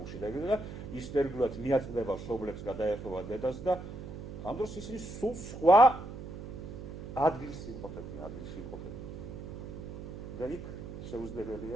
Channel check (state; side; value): noise; right; hum, 10 dB below the sound